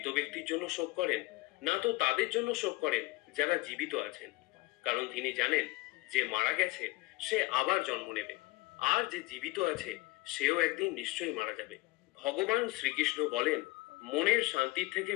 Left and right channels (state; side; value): quieter; right; 21.5 dB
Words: ব্যক্তির জন্য শোক করেন, না তো তাদের জন্য শোক করেন যারা জীবিত আছেন। কারণ তিনি জানেন, যে মারা গেছে সে আবার জন্ম নেবে, আর যে জীবিত আছে সেও একদিন নিশ্চয়ই মারা যাবে। ভগবান শ্রীকৃষ্ণ বলেন, মনের শান্তির থেকে